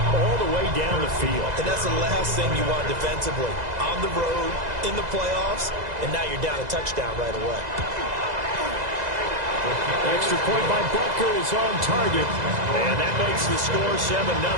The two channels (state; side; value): late; left; 2.0 ms